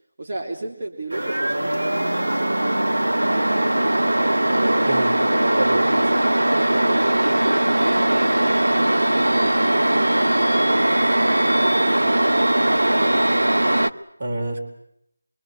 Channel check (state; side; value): inverted; both; correlation -0.99